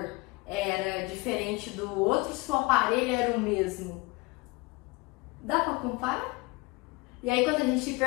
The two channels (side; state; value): right; quieter; 25.2 dB